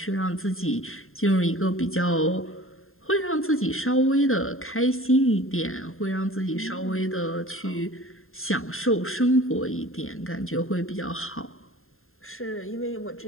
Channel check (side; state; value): right; late; 0.61 ms